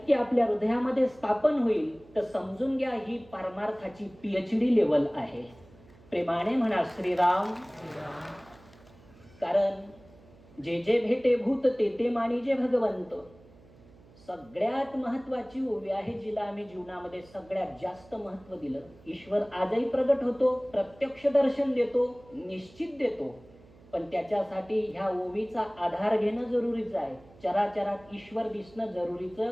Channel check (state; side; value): noise; right; hum, 25 dB below the sound